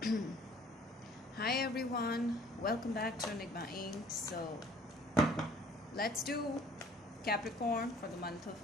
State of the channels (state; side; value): normal; both; correlation 0.55